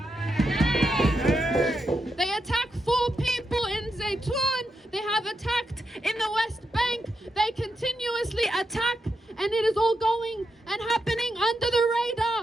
They attacked 4 people in Zaytoun. They have attacked in the West Bank. They continuously attack, and it is all going and happening under the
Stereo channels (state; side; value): normal; both; correlation 0.85